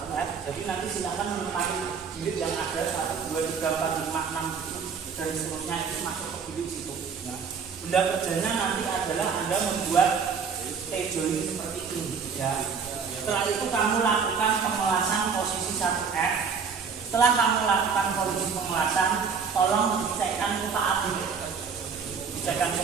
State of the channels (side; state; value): left; quieter; 5.9 dB